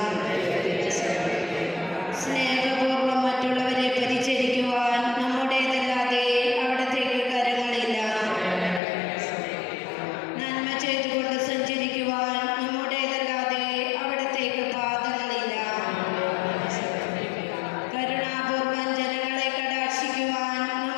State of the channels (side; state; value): right; drops out; at 8.8 s